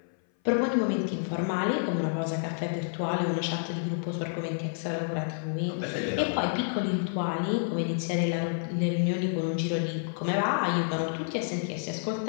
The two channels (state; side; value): silent; right; 58 dB below the other